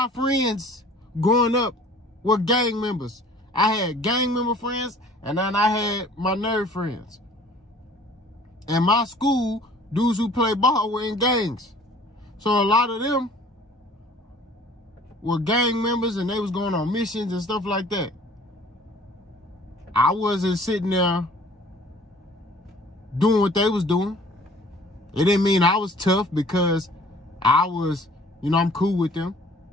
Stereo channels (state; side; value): normal; both; correlation 0.51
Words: friends growing up were gang members. I had gang member friends, and then I had my nerd friends. And my school, dudes who play ball were in gangs. So a lot of them were gang members, and they was going on missions and stuff like that. I wasn't sitting there doing what they was doing. It didn't mean I was tough because I was, you know, I'm cool with them.